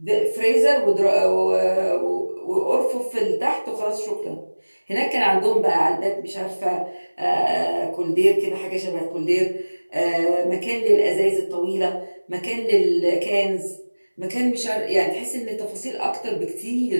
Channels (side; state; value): both; inverted; correlation -1.00